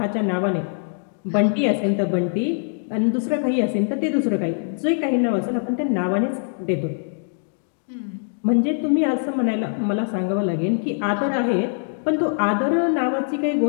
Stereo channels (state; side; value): silent; right; digital silence